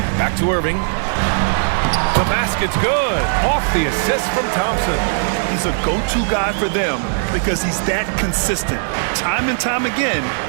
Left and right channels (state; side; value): silent; left; 67 dB below the other